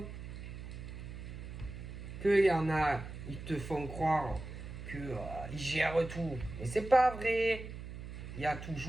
qu'il y en a, ils te font croire qu'ils gèrent tout. Mais c'est pas vrai. Il y a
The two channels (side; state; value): right; noise; hum, 10 dB below the sound